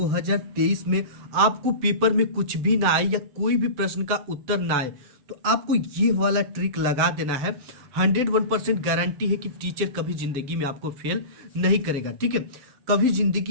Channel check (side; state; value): left; late; 7.6 ms